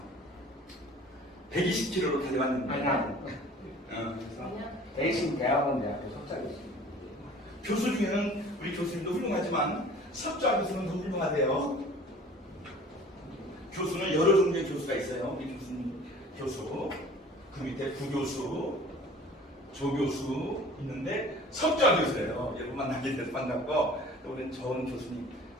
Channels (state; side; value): normal; both; correlation 0.47